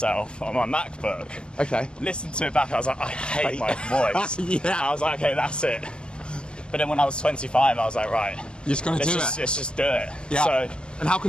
on my MacBook. Okay. Listened to it back. I was like, I hate my voice. Yeah. I was like, okay, that's it. But then when I was 25, I was like, right, You're just gonna do it. Let's just do it. Yeah. So, and how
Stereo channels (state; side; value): late; right; 0.055 ms